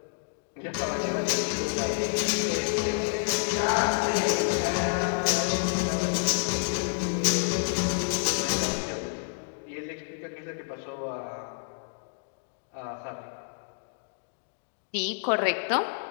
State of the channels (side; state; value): right; silent; digital silence